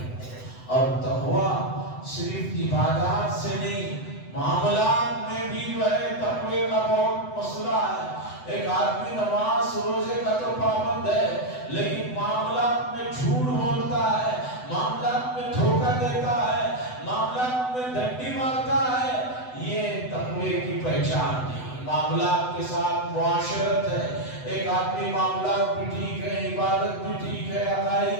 ہوں۔ اور تقویٰ صرف عبادات سے نہیں، معاملات میں بھی جو ہے تقوی کا بہت مسئلہ ہے۔ ایک آدمی نماز روزے کا تو پابند ہے، لیکن معاملات میں جھوٹ بولتا ہے، معاملات میں دھوکہ دیتا ہے، معاملات میں ڈنڈی مارتا ہے، یہ تقوی کی پہچان نہیں۔ معاملات کے ساتھ معاشرت ہے، ایک آدمی معاملات بھی ٹھیک ہے، عبادت بھی ٹھیک ہے، عقائد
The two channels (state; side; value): late; right; 7.9 ms